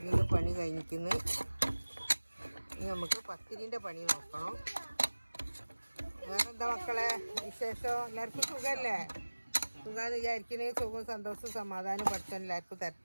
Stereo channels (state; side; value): inverted; both; correlation -1.00